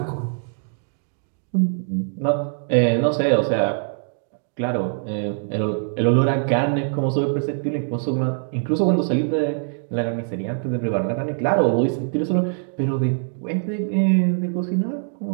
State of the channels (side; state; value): left; silent; digital silence